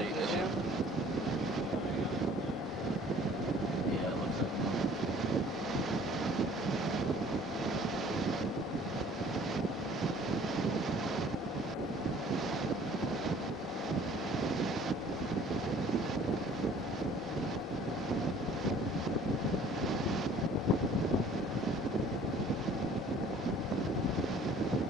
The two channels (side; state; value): both; normal; correlation 0.53